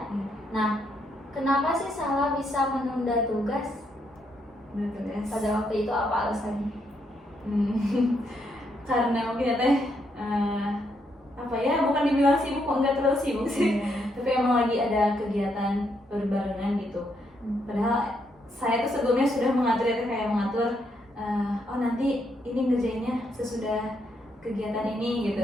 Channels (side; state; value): both; normal; correlation 0.77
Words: Nah, kenapa sih Sahla bisa menunda tugas? Pada waktu itu apa alasannya? Karena mungkin ya Teh, apa ya, bukan dibilang sibuk, enggak terlalu sibuk sih, tapi emang lagi ada kegiatan berbarengan gitu. Padahal saya tuh sebelumnya sudah mengatur ya Teh, kayak mengatur oh nanti ini ngerjainnya sesudah kegiatan ini